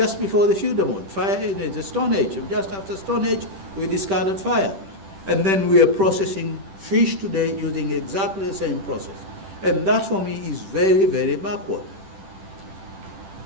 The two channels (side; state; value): left; late; 10 ms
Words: before the feudal mode. Fire in the Stone Age. Just after Stone Age, we discovered fire. And then we are processing fish today using exactly the same process. And that for me is very, very backward.